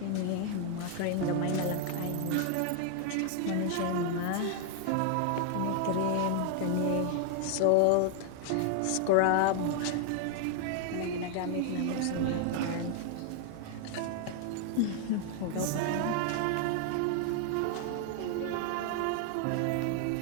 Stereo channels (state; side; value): different; both; correlation 0.00